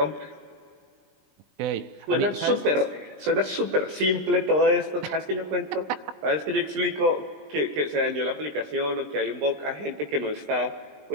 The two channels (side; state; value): left; late; 20 ms